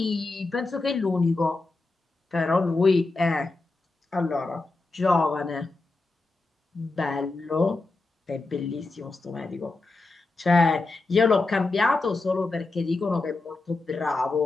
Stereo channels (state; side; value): quieter; right; 3.4 dB